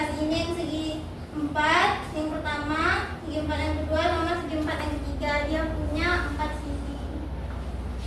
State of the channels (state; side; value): identical; both; correlation 1.00